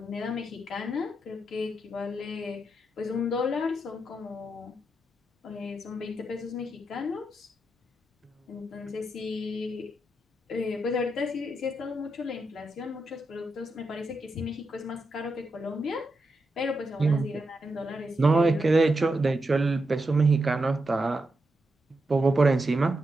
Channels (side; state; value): both; normal; correlation 0.85